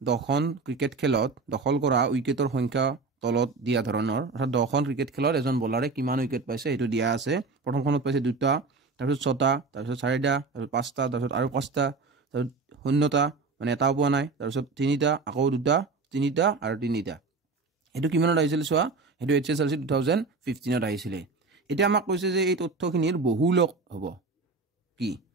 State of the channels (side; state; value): left; quieter; 4.1 dB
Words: 10খন ক্ৰিকেট খেলত দখল কৰা উইকেটৰ সংখ্যা তলত দিয়া ধৰণৰ অৰ্থাৎ 10খন ক্ৰিকেট খেলত এজন বলাৰে কিমান উইকেট পাইছে এটো দিয়া আছে প্ৰথমখনত পাইছে দুটা তাৰপিছত ছটা তাৰপিছত চাৰিটা তাৰপিছত পাঁচটা তাৰপিছত আৰু পাঁচটা তাৰপিছত শূন্যটা মানে এটাও পোৱা নাই তাৰপিছত তিনিটা আকৌ দুটা তিনিটা আৰু তিনিটা এটো কিমানত আহিছিল সোৱা এটো HSLC 2015 ত আহিছিল এতিয়া আমাক কৈছে যে এই তথ্যখিনিৰ বহুলক হ'ব কি